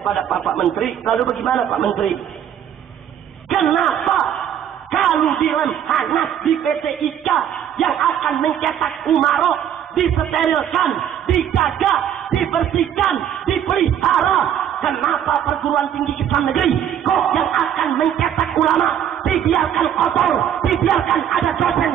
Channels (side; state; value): left; quieter; 9.7 dB